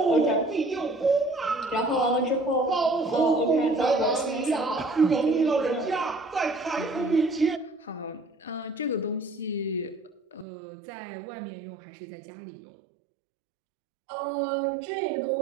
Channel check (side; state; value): left; drops out; at 10.5 s